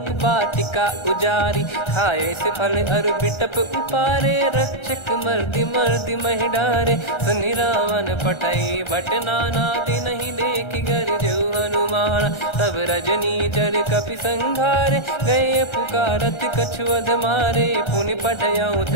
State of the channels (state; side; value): late; right; 1.3 ms